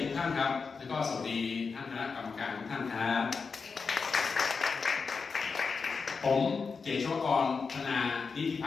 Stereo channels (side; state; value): right; quieter; 5.0 dB